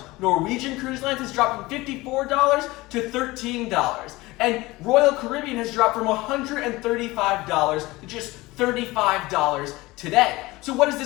Norwegian Cruise Lines has dropped from $54 to $13. And Royal Caribbean has dropped from $135 to just $35 today. So what does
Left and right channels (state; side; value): quieter; right; 20.4 dB